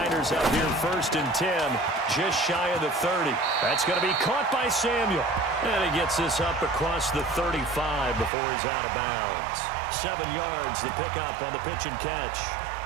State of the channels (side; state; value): left; drops out; at 8.3 s